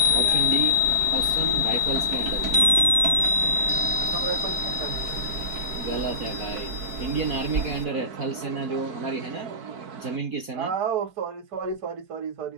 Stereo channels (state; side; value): late; left; 4.5 ms